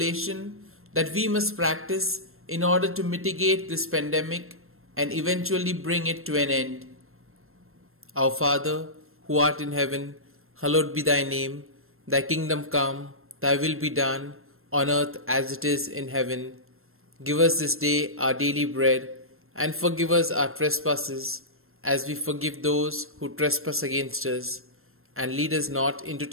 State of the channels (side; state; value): left; late; 0.62 ms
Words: that we must practice in order to mitigate this pandemic and eventually bring it to an end. Our Father, who art in heaven, hallowed be thy name. Thy kingdom come, thy will be done, on earth as it is in heaven. Give us this day our daily bread, and forgive us our trespasses, as we forgive those who trespass against us. And lead us not into